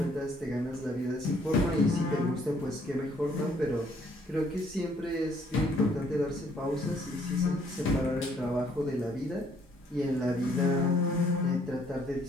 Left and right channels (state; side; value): normal; both; correlation 0.64